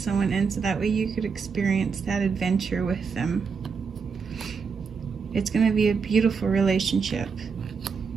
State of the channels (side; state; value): left; quieter; 5.6 dB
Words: in so that way you could experience that adventure with them. It's going to be a beautiful relationship.